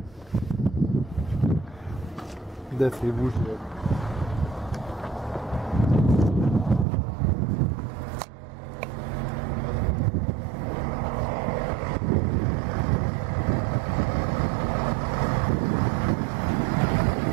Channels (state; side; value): drops out; left; at 6.9 s